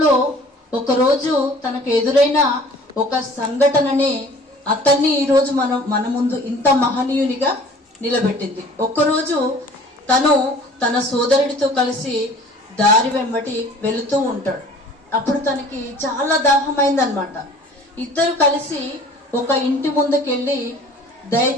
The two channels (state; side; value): normal; both; correlation 0.49